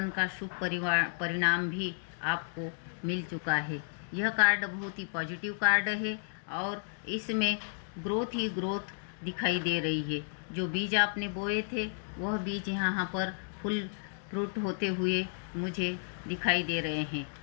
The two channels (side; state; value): right; silent; digital silence